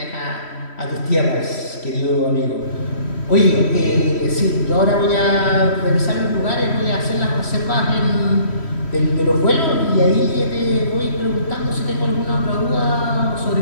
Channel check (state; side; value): late; right; 3.1 ms